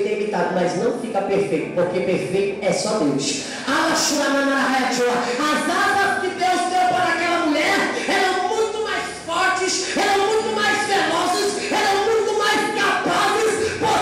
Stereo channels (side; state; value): both; identical; correlation 1.00